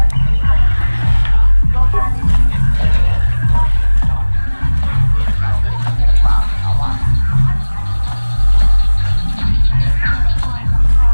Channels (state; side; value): inverted; both; correlation -1.00